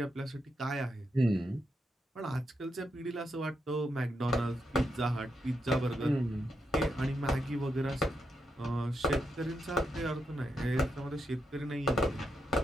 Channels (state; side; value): normal; both; correlation 0.83